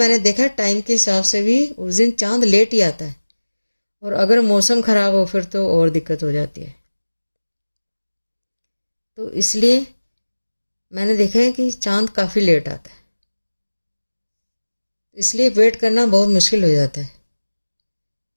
देखा टाइम के हिसाब से भी उस दिन चांद लेट ही आता है, और अगर मौसम ख़राब हो फिर तो और दिक्कत हो जाती है। तो इसलिए मैंने देखा है कि चांद काफ़ी लेट आता है, इसलिए वेट करना बहुत मुश्किल हो जाता है।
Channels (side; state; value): both; inverted; correlation -1.00